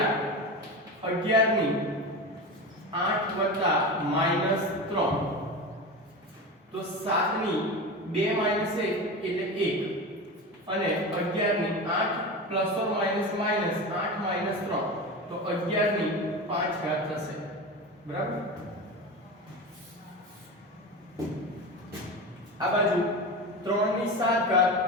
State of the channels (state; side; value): normal; both; correlation 0.25